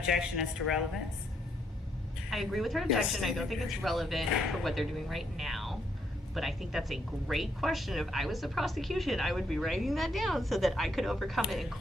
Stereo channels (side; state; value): both; normal; correlation 0.74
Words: as to relevance? I agree with her Yes. objection. I don't think it's relevant for what they're doing right now. But I think that's a great question. If I was the prosecution, I would be writing that down so that I could overcome it in